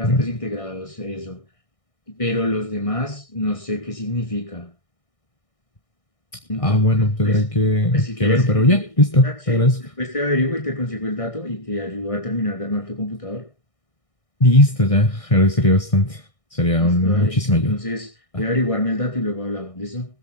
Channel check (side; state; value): right; late; 1.6 ms